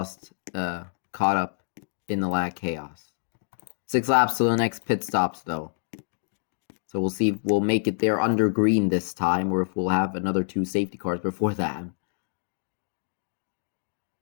up in the Lap Chaos. 6 laps to the next pit stops though. So we'll see if we'll make it there under green this time, or if we'll have another 2 safety cars before that.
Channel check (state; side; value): silent; right; digital silence